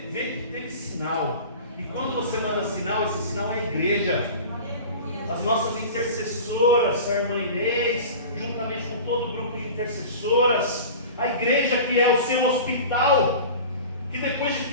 vê que teve sinal. E quando você manda sinal, esse sinal é a igreja. As nossas intercessoras, a irmã Inês, juntamente com todo o grupo de intercessoras, a igreja que é o seu hospital, que depois de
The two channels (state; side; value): inverted; both; correlation -0.36